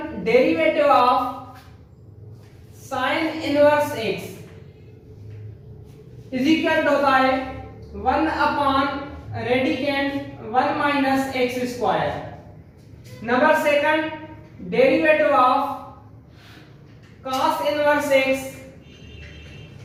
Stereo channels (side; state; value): both; identical; correlation 1.00